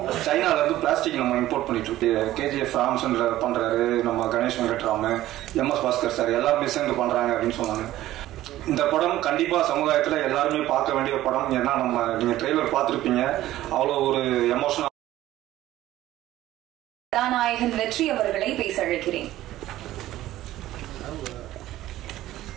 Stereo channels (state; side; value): quieter; left; 14.7 dB